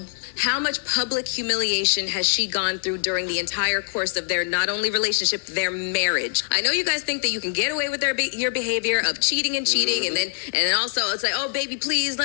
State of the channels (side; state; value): right; silent; 63 dB below the other